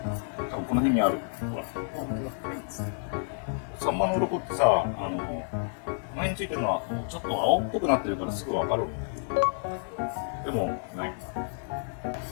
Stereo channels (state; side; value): silent; right; digital silence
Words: 多分この辺にある。ほら。サンマの鱗ってさ、前についてるのはちょっと青っぽくなってるからすぐわかる。でもない。なん